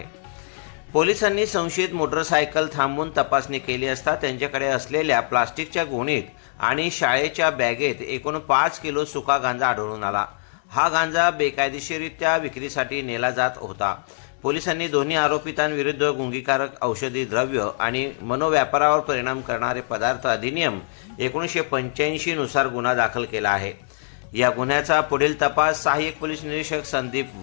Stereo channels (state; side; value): silent; right; 63 dB below the other